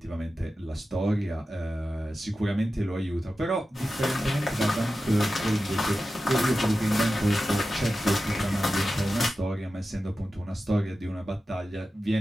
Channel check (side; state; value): both; normal; correlation 0.93